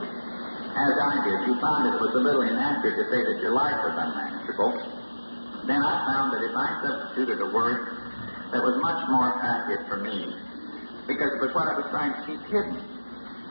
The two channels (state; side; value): inverted; both; correlation -1.00